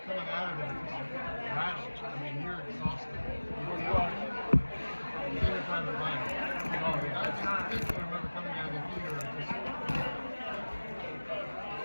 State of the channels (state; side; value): inverted; both; correlation -1.00